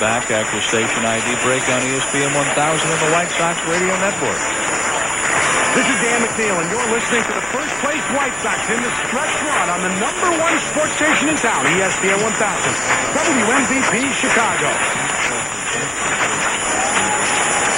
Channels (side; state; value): left; noise; rumble, 25 dB below the sound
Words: after station ID break on ESPN 1000 and the White Sox Radio Network. This is Dan McNeil, and you're listening to the first-place White Sox in the stretch run on the #1 sports station in town, ESPN 1000, WMVP Chicago.